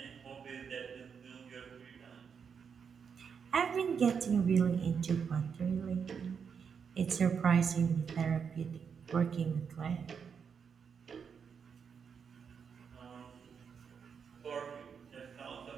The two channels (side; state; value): left; quieter; 6.6 dB